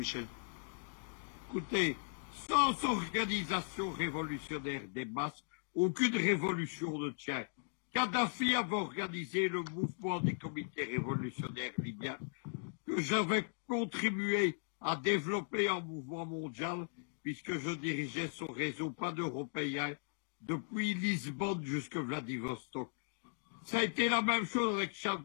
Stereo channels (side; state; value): right; silent; digital silence